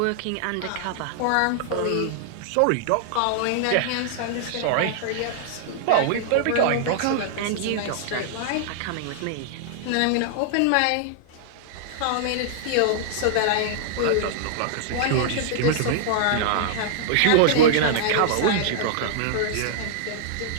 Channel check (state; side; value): different; both; correlation -0.01